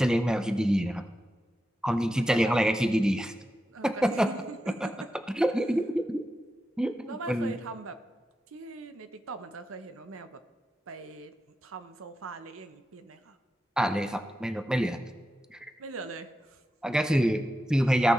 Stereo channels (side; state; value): both; normal; correlation 0.90